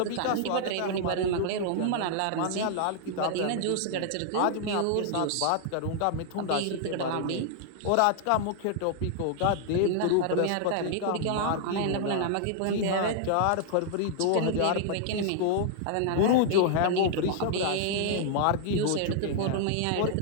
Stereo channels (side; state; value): both; different; correlation -0.01